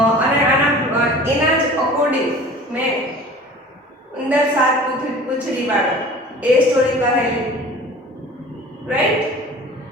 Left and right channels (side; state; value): both; normal; correlation 0.43